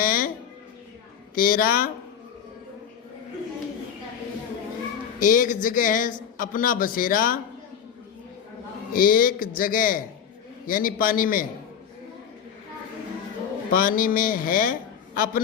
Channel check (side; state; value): right; quieter; 8.2 dB